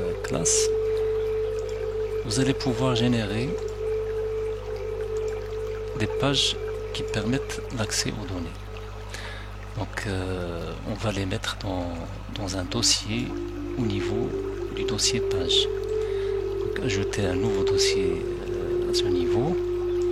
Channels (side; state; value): both; identical; correlation 1.00